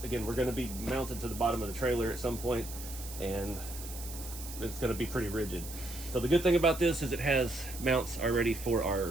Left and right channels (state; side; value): noise; right; hiss, 12 dB below the sound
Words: again, we're going to be mounted to the bottom of the trailer at some point, and it's going to be pretty rigid. So the good thing about this is it has mounts already for